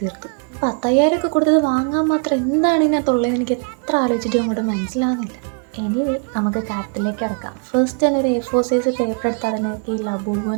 തീർത്തു. 10,000 ഒക്കെ കൊടുത്തത് വാങ്ങാൻ മാത്രം എന്താണ് ഇതിനകത്തുള്ളതെന്ന് എനിക്ക് എത്ര ആലോചിച്ചിട്ടും അങ്ങോട്ട് മനസ്സിലാവുന്നില്ല. എനിവേ, നമുക്ക് കാര്യത്തിലേക്ക് കിടക്കാം. ഫസ്റ്റ് തന്നെ ഒരു A4 സൈസ് പേപ്പർ എടുത്ത് അതിനൊക്കെ ഈ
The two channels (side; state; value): left; quieter; 39.6 dB